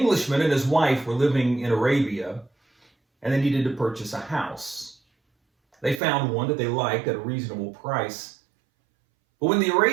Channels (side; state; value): left; drops out; at 6.0 s